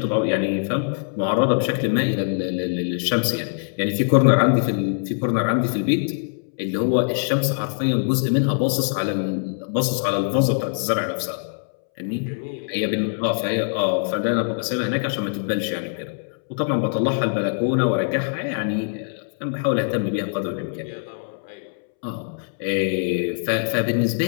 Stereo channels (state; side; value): silent; right; 63 dB below the other